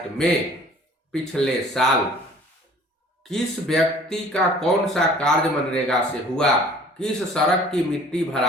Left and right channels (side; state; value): both; normal; correlation 0.51